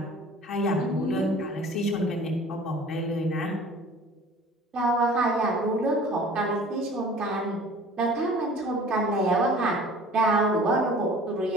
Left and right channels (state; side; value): normal; both; correlation 0.46